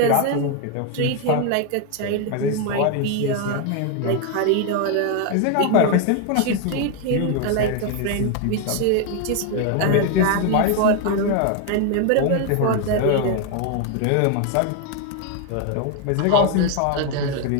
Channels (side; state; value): both; different; correlation 0.01